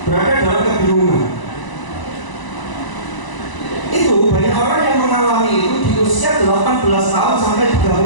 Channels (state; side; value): late; right; 1.0 ms